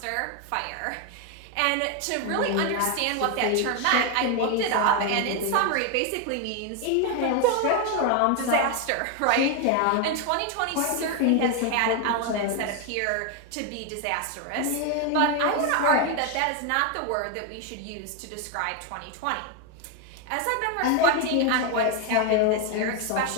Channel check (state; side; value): different; both; correlation 0.01